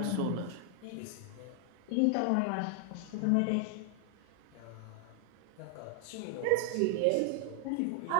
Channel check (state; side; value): different; both; correlation 0.00